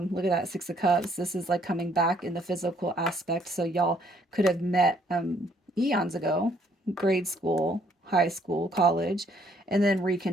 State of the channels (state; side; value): normal; both; correlation 0.66